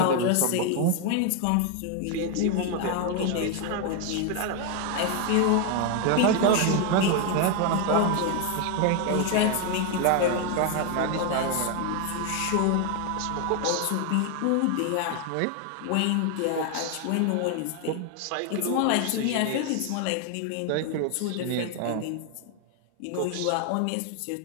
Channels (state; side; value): different; both; correlation 0.01